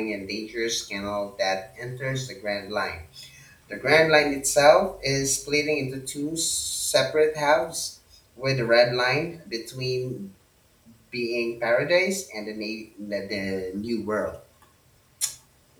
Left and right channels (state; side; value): identical; both; correlation 1.00